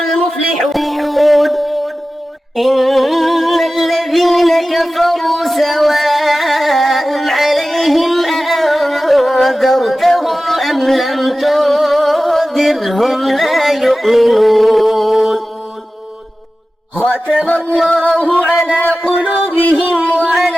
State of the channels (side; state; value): both; normal; correlation 0.95